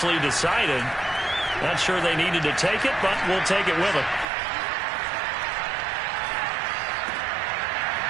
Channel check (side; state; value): left; drops out; at 4.2 s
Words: decided. Not sure they needed to take it, but we'll take it with them.